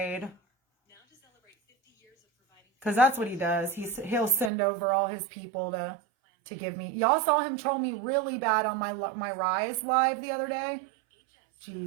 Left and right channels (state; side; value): drops out; left; at 4.5 s